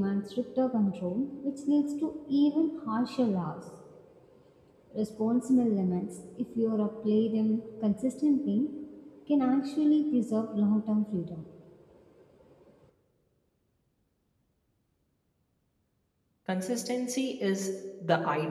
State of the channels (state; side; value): identical; both; correlation 1.00